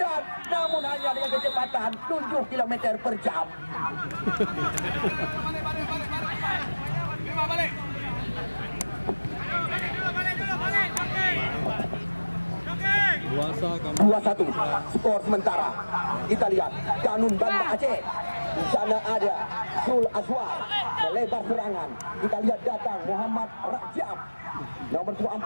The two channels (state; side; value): inverted; both; correlation -1.00